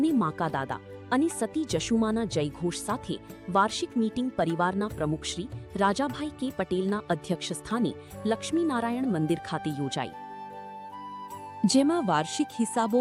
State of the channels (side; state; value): both; identical; correlation 1.00